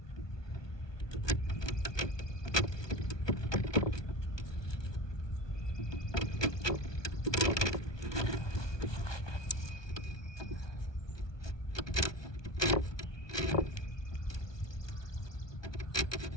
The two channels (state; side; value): late; right; 1.2 ms